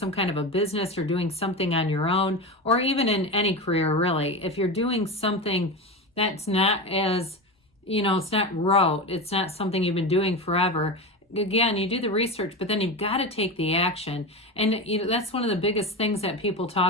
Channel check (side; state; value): both; normal; correlation 0.22